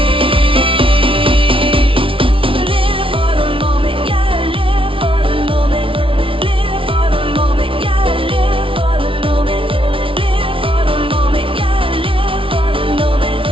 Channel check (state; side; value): late; left; 0.25 ms